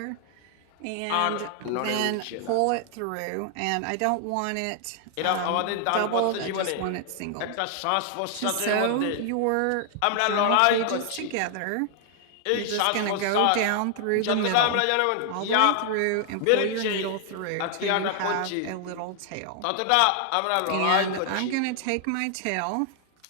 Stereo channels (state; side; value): different; both; correlation 0.00